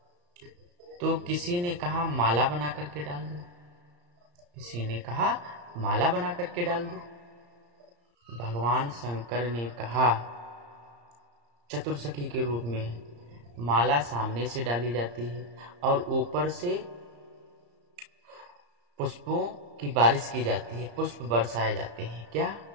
तो किसी ने कहा माला बना करके डाल दो, किसी ने कहा माला बना करके डाल दो। भगवान शंकर ने कहा चतुर्सखी के रूप में माला सामने से डाली जाती है और ऊपर से पुष्पों की बारिश की जाती है, पुष्प बरसाए जाते हैं। क्या?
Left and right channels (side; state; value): left; late; 34 ms